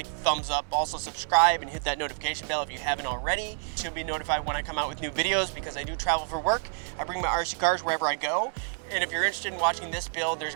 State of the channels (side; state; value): left; silent; 59 dB below the other